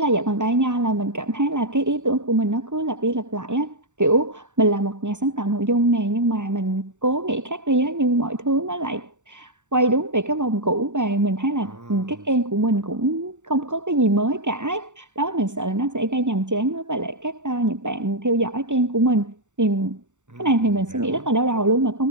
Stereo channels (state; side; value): late; left; 0.84 ms